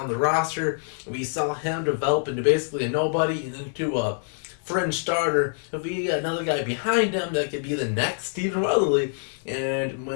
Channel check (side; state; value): right; silent; 61 dB below the other